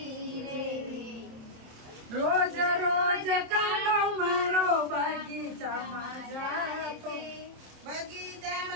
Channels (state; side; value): late; left; 27 ms